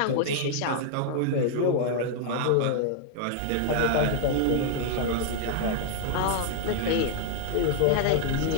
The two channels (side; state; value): both; different; correlation 0.00